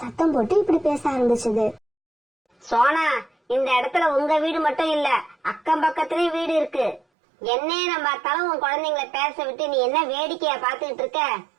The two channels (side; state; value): left; drops out; at 7.0 s